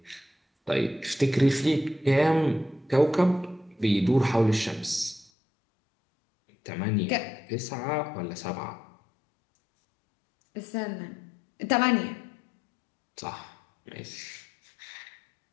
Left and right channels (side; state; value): right; drops out; at 5.3 s